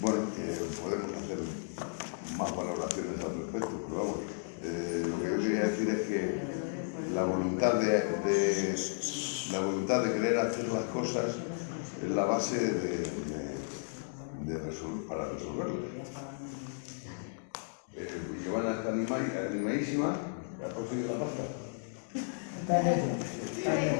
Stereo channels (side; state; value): right; silent; digital silence